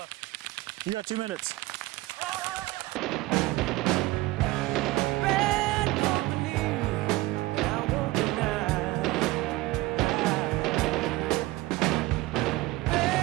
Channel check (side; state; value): left; quieter; 19.6 dB